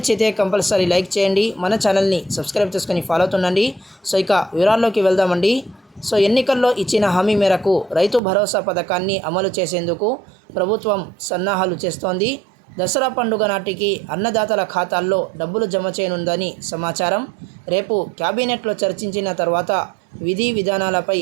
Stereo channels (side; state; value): left; drops out; at 8.2 s